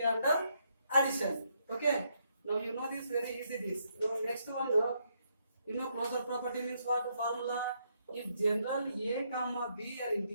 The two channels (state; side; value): inverted; both; correlation -0.75